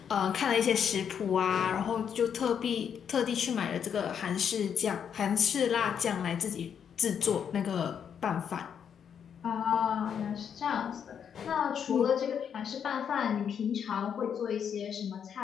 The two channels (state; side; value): quieter; right; 7.9 dB